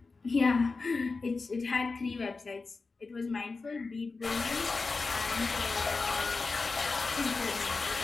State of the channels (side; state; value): right; quieter; 4.1 dB